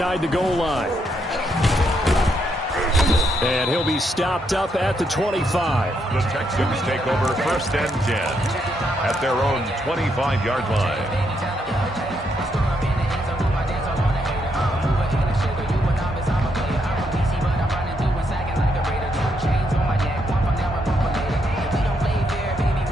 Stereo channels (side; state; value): both; normal; correlation 0.77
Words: the goal line. And he'll be stopped up at the 25. The Texans take over 1st and 10 at their own 25-yard line.